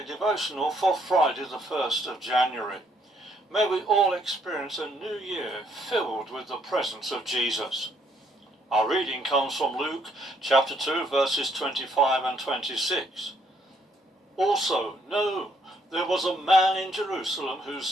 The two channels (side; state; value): both; normal; correlation 0.69